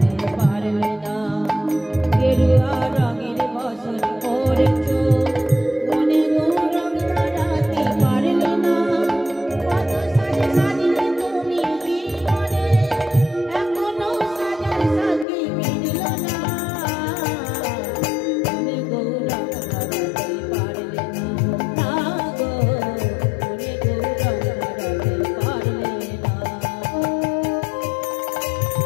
পারলে না। গেরুয়া রঙের বসন পরেছ, মনে গৌরং ধরাতে পারলে না। কত সাজে সাজলে তুমি জীবনে, এখনো সাজার সাথে মিলল না। মনে গৌরং ধরাতে পারলে না, না গো মনে গৌরং ধরাতে পারলে না।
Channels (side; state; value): right; drops out; at 15.2 s